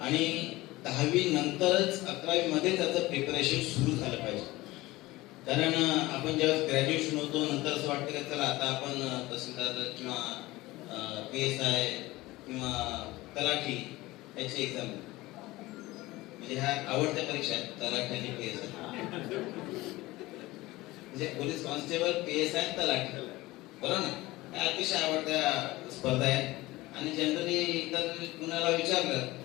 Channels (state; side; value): quieter; right; 19.3 dB